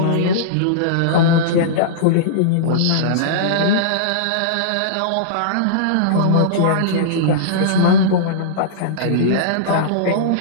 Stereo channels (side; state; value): both; different; correlation -0.03